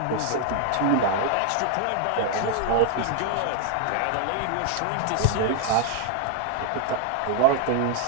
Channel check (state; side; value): different; both; correlation 0.00